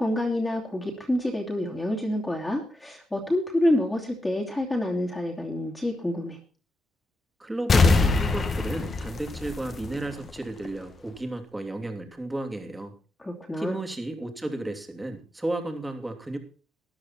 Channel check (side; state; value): both; normal; correlation 0.86